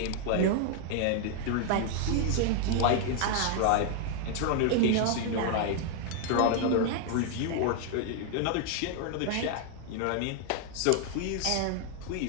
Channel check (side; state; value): both; different; correlation 0.00